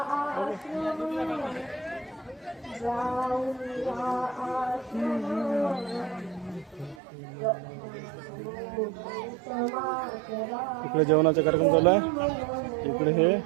इकडे जेवणाचा कार्यक्रम चालू आहे. इकडे हे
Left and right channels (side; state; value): left; drops out; at 7.0 s